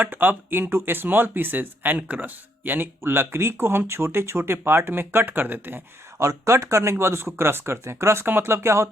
up into small pieces and crush. यानी लकड़ी को हम छोटे छोटे पार्ट में कट कर देते हैं और कट करने के बाद उसको क्रश करते हैं। क्रश का मतलब क्या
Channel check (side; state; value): both; normal; correlation 0.73